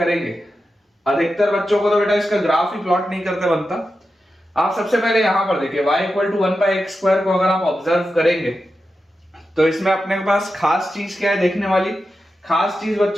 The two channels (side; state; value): both; normal; correlation 0.90